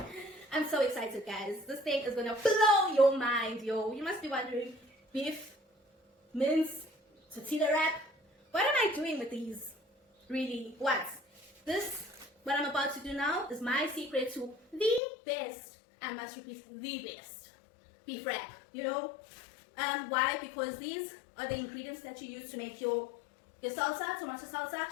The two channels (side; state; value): right; drops out; at 15.0 s